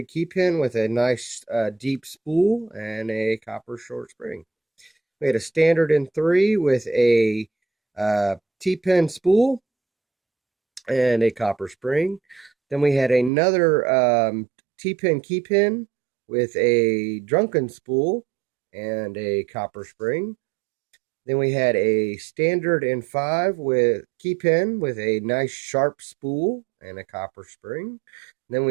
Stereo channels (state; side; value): drops out; left; at 13.3 s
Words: key pin with a nice deep spool and a copper short spring. We had a standard in 3 with a T-pin spool and a copper spring. Then we had another T-pin key pin with a drunken spool and a copper spring. Then we had a standard in 5 with key pin with a nice sharp spool and a copper spring. Then